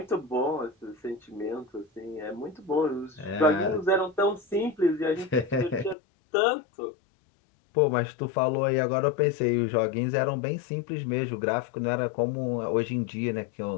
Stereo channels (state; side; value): drops out; right; at 6.0 s